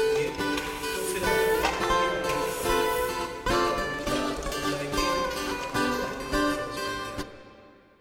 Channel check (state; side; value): identical; both; correlation 1.00